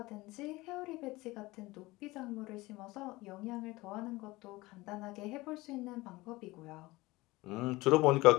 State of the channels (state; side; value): quieter; right; 20.5 dB